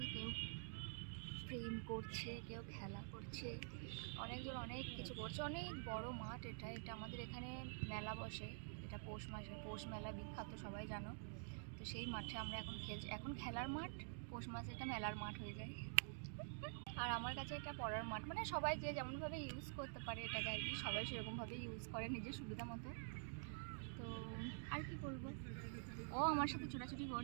কেউ প্রেম করছে, কেউ খেলা করছে, অনেকজন অনেক কিছু করছে। অনেক বড় মাঠ এটা আমাদের এখানে মেলা বসে, এটা পৌষ মাসে, পৌষ মেলা বিখ্যাত, সবাই জানো। তো সেই মাঠে আমরা এখন খেলছি। এখন খেলার মাঠ, পৌষ মাসে এটা মেলার মাঠ হয়ে যায়। আর আমার কাছে এটা পড়ার মাঠ, মানে সবাই যে যেমনভাবে ইউজ করতে পারে এটাকে আর কি, সবাই সেরকমভাবে ইউজ করে নিজের সুবিধা মতো। তো আর কি বলবো, ও আমার সাথে ছোটাছুটি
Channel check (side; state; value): left; silent; digital silence